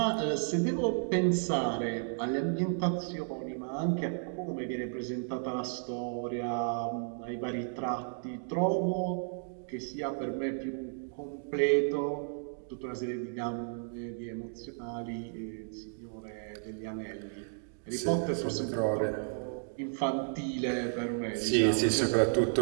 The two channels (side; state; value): left; silent; digital silence